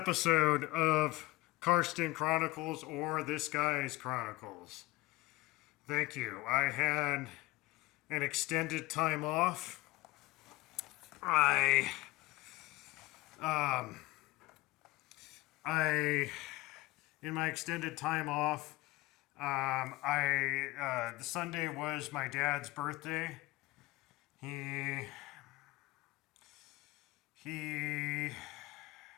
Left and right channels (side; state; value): right; quieter; 19.6 dB